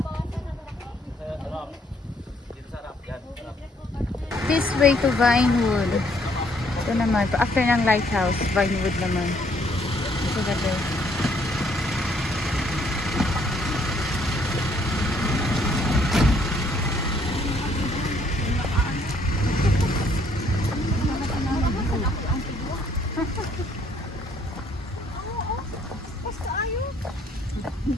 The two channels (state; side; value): normal; both; correlation 0.66